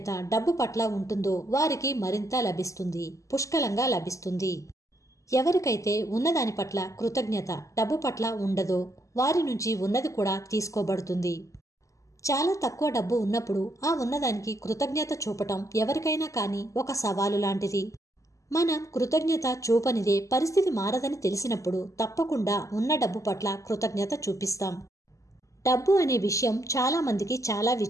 డబ్బు పట్ల ఉంటుందో వారికి మరింత లభిస్తుంది, పుష్కలంగా లభిస్తుంది. ఎవరికైతే ఉన్నదాని పట్ల కృతజ్ఞత డబ్బు పట్ల ఉండదో వారి నుంచి ఉన్నది కూడా తీసుకోబడుతుంది. చాలా తక్కువ డబ్బు ఉన్నప్పుడు ఆ ఉన్నదానికి కృతజ్ఞత చూపటం ఎవరికైనా కానీ ఒక సవాలు లాంటిది. మనం కృతజ్ఞత చూపనిదే పరిస్థితి మారదని తెలిసినప్పుడు తప్పకుండా ఉన్న డబ్బు పట్ల కృతజ్ఞత చూపిస్తాం. డబ్బు అనే విషయం చాలా మందికి చాలా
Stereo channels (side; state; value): right; late; 0.16 ms